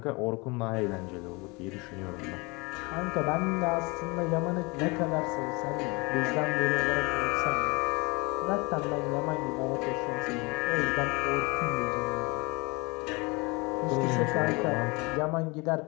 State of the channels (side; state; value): right; quieter; 27.1 dB